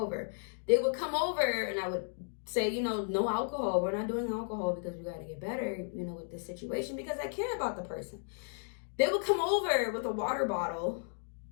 They would come over and I would say, no alcohol. We're not doing alcohol because we got to get better, with this situation because I care about the person. They would come over with a water bottle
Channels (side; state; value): right; silent; digital silence